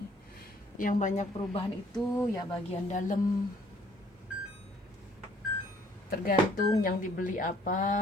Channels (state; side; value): normal; both; correlation 0.61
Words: yang banyak perubahan itu ya bagian dalam, tergantung yang dibeli